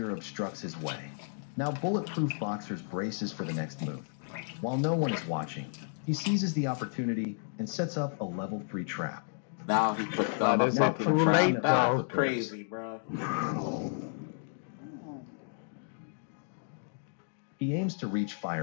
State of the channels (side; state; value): right; silent; digital silence